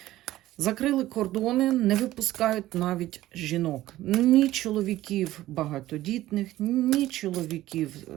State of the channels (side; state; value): left; quieter; 15.4 dB